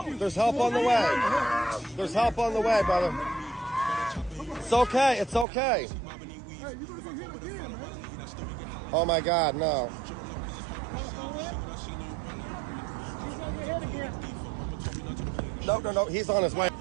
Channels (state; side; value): drops out; left; at 5.5 s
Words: There's help on the way. There's help on the way, brother. It's okay. It's okay. Oh my God, no. No. He's on his way.